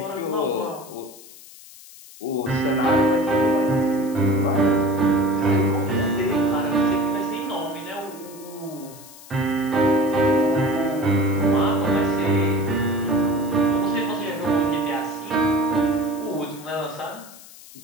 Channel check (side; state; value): left; noise; hiss, 19 dB below the sound